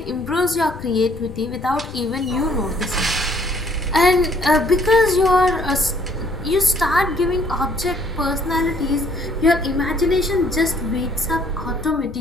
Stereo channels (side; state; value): left; noise; rumble, 15 dB below the sound